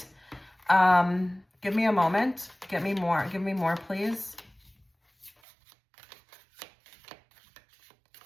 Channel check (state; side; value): drops out; left; at 5.3 s